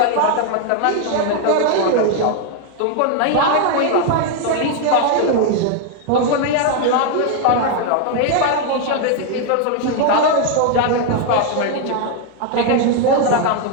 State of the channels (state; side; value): different; both; correlation 0.01